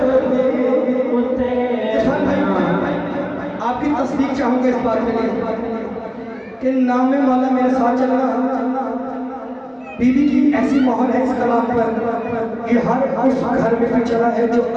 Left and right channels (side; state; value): both; identical; correlation 1.00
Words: इरफान भाई, आपकी तस्दीक चाहूंगा इस बात के लिए कि नाम में मौला मेरे साथ चलना बीबी की ऐसी मोहर है इस कलाम पर, ये हर उस घर में भी चला है जो